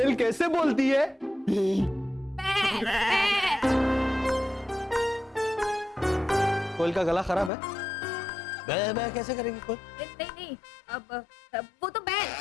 कैसे बोलती है? कोयल का गला खराब है। बै बै कैसे करेगी कोयल? नहीं नहीं, अब वो तो बैल।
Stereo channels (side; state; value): right; drops out; at 7.5 s